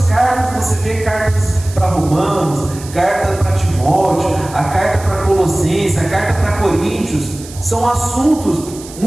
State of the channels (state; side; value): noise; right; hiss, 17 dB below the sound